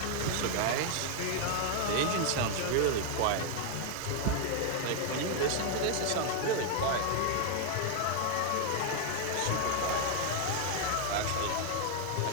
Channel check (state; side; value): different; both; correlation 0.00